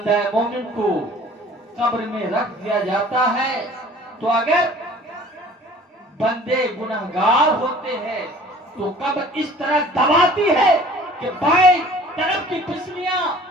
مومن کو قبر میں رکھ دیا جاتا ہے تو اگر بندے گنہگار ہوتے ہیں تو قبر اس طرح دباتی ہے کہ بائیں طرف کی پسلیاں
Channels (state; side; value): normal; both; correlation 0.49